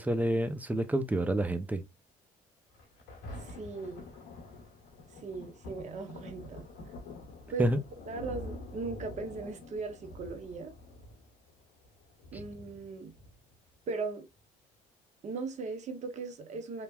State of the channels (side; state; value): both; normal; correlation 0.71